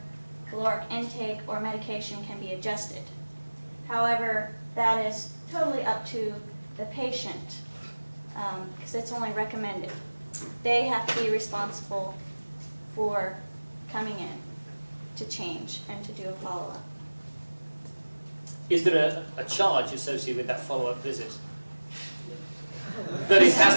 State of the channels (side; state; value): both; inverted; correlation -1.00